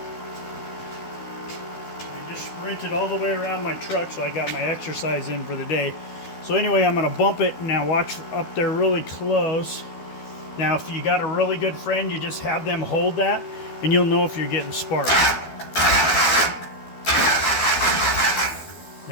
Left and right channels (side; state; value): right; late; 12 ms